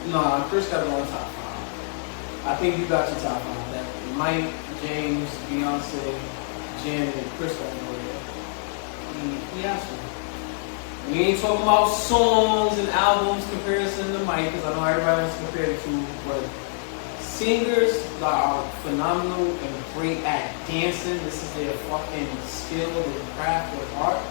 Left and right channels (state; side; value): silent; right; digital silence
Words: No, Chris got to go in top 5. I think you got your top 5. That Mike, James, Beyonce, Janet, Chris got to go there. He has to. We ain't talking about songs and albums comparison to Mike, because I know everybody wants to compare the two, but singers that are phenomenal and great at dancing, this is their fucking skill, their craft, their art.